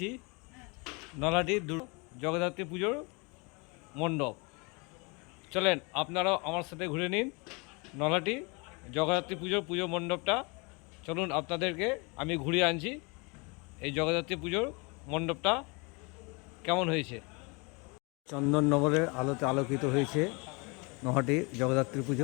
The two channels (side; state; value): right; quieter; 29.9 dB